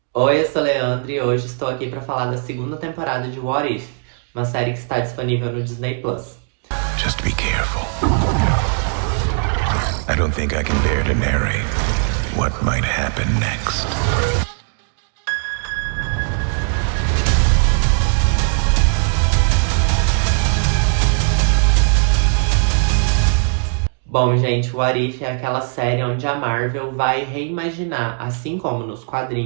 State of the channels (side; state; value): left; silent; 56 dB below the other